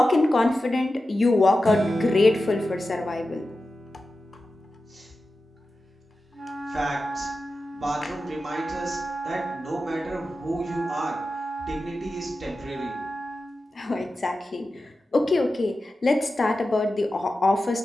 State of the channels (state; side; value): normal; both; correlation 0.93